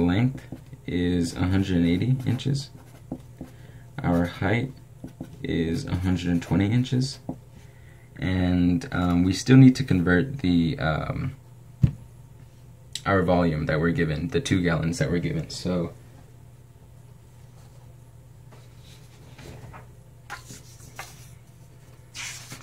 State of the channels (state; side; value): identical; both; correlation 1.00